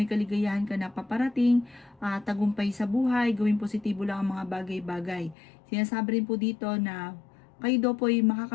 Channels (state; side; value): drops out; right; at 5.4 s